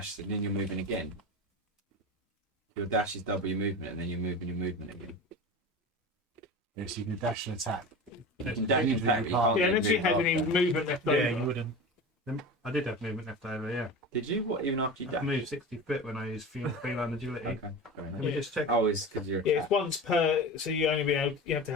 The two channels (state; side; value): normal; both; correlation 0.30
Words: and then you're moving again. Your dash is double your movement and then you're moving your movement again. Yes, you can dash and attack. You can dash and Usually attack, you but can't. you Yeah, can't unless you move had any after. movement left over. Yeah, you wouldn't. I did have movement left over, yeah. Did you? What, even after you I dashed? moved 60 foot when I used feline agility. Okay, fair Let enough. me just check. Oh, it's because you're Yeah, it's once per. So you only be able. You have to